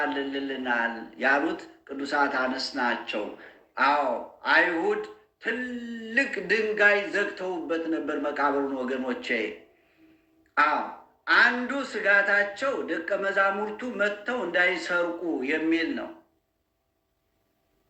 ያሉት ቅዱሳት አንስት ናቸው። አይሁድ ትልቅ ድንጋይ ዘግተውበት ነበር መቃብሩን ወገኖቼ። አንዱ ስጋታቸው ደቀ መዛሙርቱ መጥተው እንዳይሰርቁ የሚል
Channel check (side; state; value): both; identical; correlation 1.00